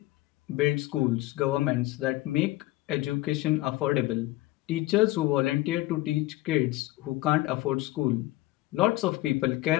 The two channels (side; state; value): right; quieter; 18.2 dB